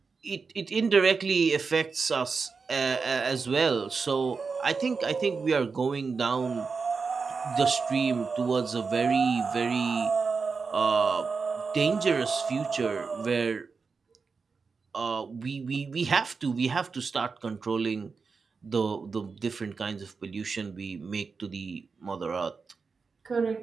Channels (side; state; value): left; quieter; 4.9 dB